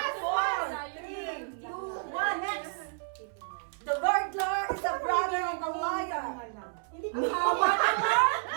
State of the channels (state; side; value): silent; left; digital silence